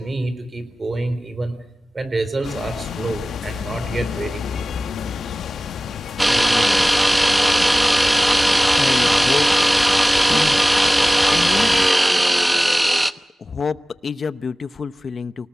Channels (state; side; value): normal; both; correlation 0.97